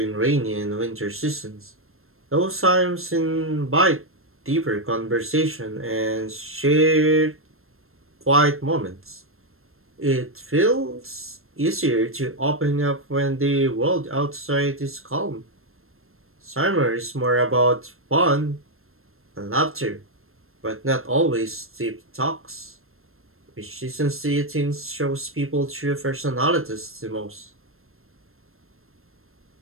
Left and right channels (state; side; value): late; left; 0.62 ms